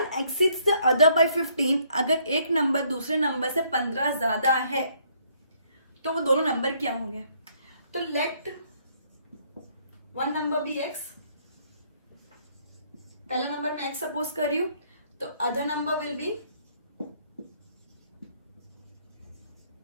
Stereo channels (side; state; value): both; inverted; correlation -0.66